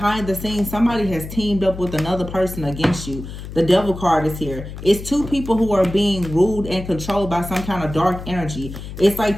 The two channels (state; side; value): noise; left; hum, 10 dB below the sound